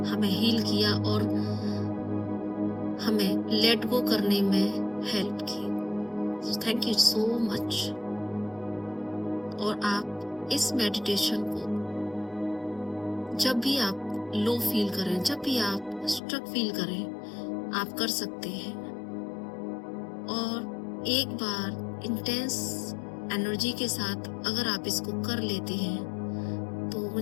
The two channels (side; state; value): right; drops out; at 16.2 s